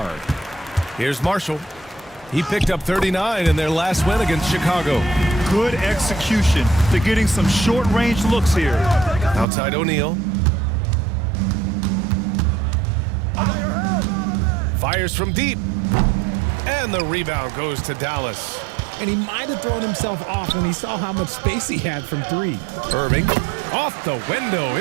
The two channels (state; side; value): drops out; left; at 9.5 s